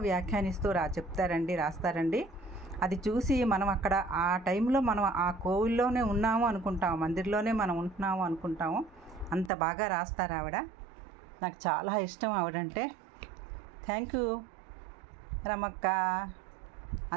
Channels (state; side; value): drops out; left; at 9.5 s